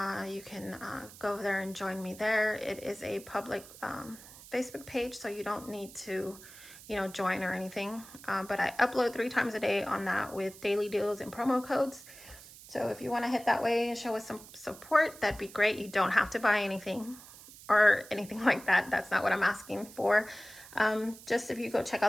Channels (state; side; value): noise; right; hiss, 18 dB below the sound